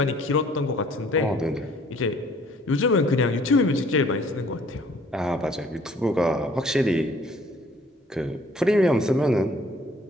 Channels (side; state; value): both; normal; correlation 0.58